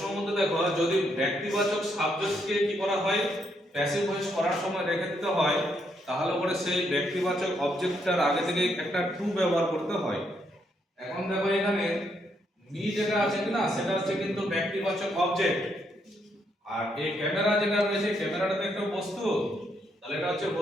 মধ্যে দেখো, যদি ব্যক্তিবাচক সাবজেক্টকে কি করা হয়, প্যাসিভ ভয়েস করার সময় রেখে দিতে হয়, তাহলে পরে সেই ব্যক্তিবাচক অবজেক্টটার আগে থেকে একটা টু ব্যবহার করতে হয়। এখন দেখো এখানে মি যেটা আছে কিনা, সেটা হচ্ছে কিন্তু ব্যক্তিবাচক অবজেক্ট। আর এই ক্যামেরা যেটা রয়েছে, ক্যামেরাটা তো একটা বস্তু, তাহলে এটা হচ্ছে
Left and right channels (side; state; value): both; normal; correlation 0.76